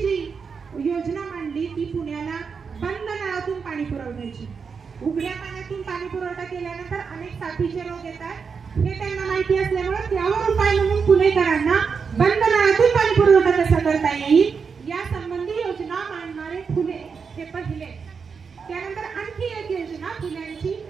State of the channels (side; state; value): left; quieter; 5.7 dB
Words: योजना मांडली ती पुण्याला बंद नळातून पाणी पुरवण्याची। उघड्या पाण्यातून पाणी पुरवठा केल्यानंतर अनेक साथीचे रोग येतात, हे त्यांना माहिती असल्यामुळे त्यावर उपाय म्हणून पुणेकरांना बंद नळातून पाणी पुरवठा कसा करता येईल या संबंधी योजना मांडणारे फुले हे पहिले। त्यानंतर आणखी एक योजना फुल्यांची,